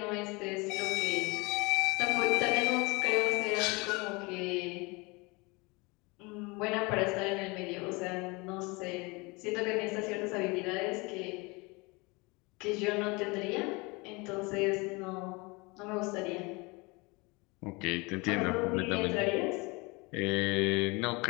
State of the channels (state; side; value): quieter; right; 26.5 dB